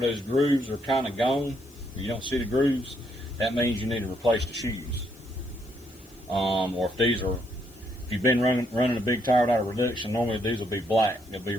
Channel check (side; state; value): left; noise; hiss, 27 dB below the sound